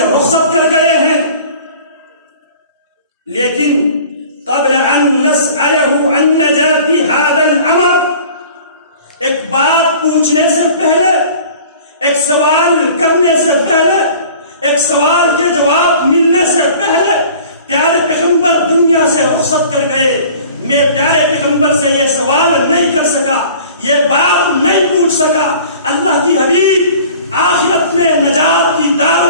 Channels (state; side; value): inverted; both; correlation -0.46